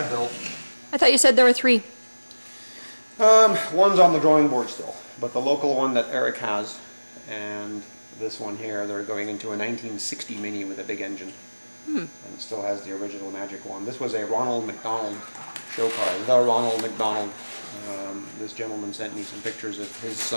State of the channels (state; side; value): inverted; both; correlation -1.00